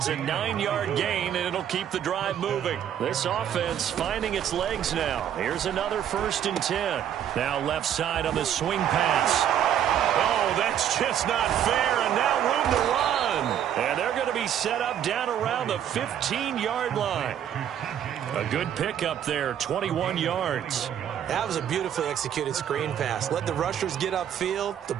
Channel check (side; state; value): left; quieter; 9.9 dB